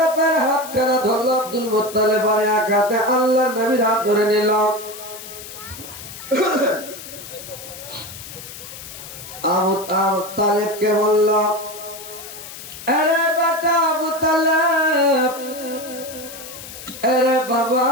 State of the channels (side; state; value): left; noise; hiss, 13 dB below the sound